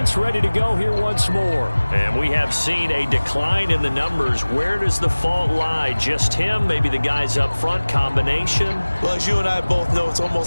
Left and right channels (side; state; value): both; inverted; correlation -1.00